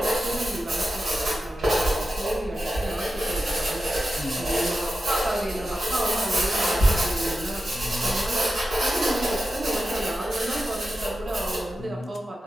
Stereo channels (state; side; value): normal; both; correlation 0.91